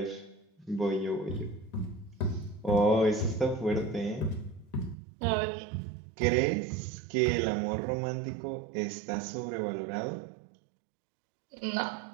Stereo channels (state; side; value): drops out; left; at 5.0 s